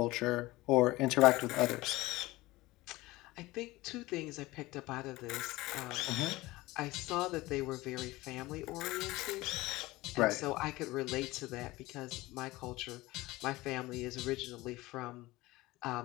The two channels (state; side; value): quieter; right; 19.5 dB